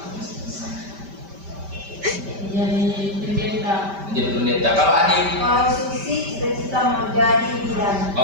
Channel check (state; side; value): late; left; 5.1 ms